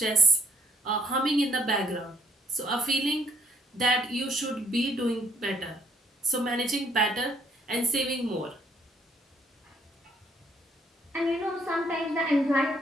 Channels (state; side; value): normal; both; correlation 0.66